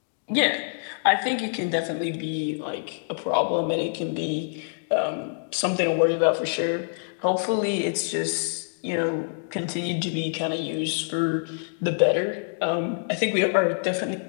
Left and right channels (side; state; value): right; silent; digital silence